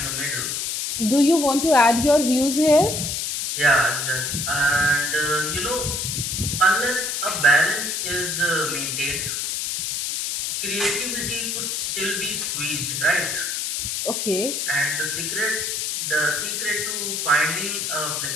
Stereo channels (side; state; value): left; noise; hiss, 2 dB below the sound